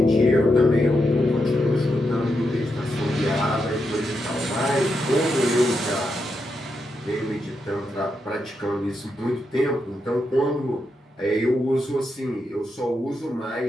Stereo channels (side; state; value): both; normal; correlation 0.84